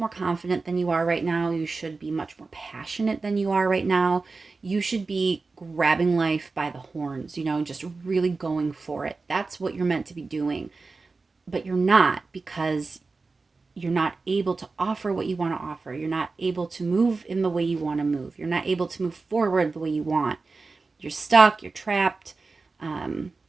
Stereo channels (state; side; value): quieter; left; 4.0 dB